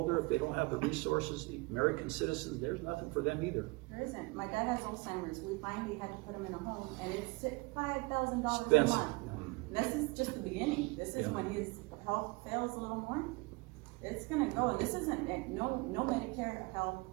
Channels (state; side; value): quieter; left; 26.1 dB